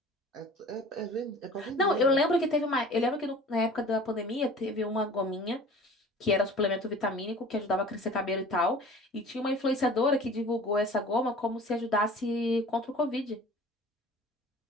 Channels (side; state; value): both; normal; correlation 0.44